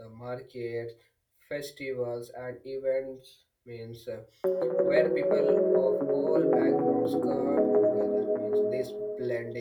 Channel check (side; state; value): both; identical; correlation 1.00